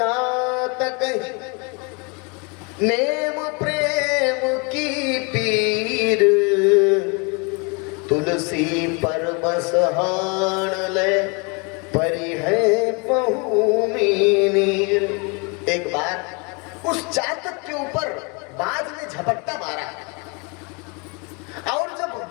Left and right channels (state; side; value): quieter; right; 31.8 dB